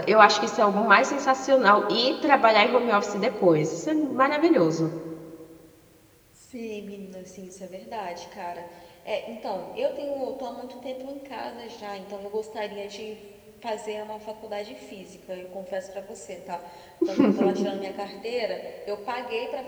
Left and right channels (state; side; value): identical; both; correlation 1.00